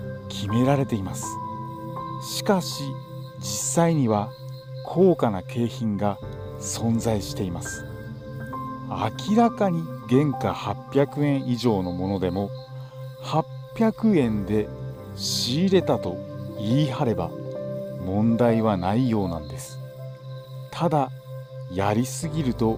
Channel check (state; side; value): identical; both; correlation 1.00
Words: 決められています。しかし実際には高価な景品が存在しています。明らかに原価800円以上のものでも800円で仕入れたと言い張れば問題はないようなんです。ただやりすぎると